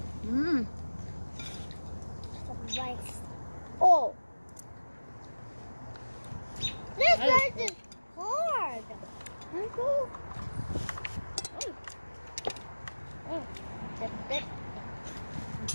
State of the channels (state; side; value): inverted; both; correlation -1.00